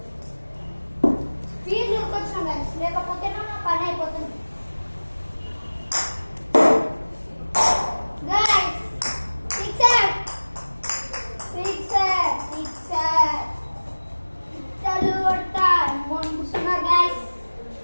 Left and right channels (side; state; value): both; inverted; correlation -1.00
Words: స్పీడ్ ఉరికొచ్చిన గైస్, లేకపోతే నా పని అయిపోతుంది. గైస్ సిక్సర్ సిక్సర్ సిక్సర్ సిక్సర్లు కొడతా మొండుస్తున్నారు guys.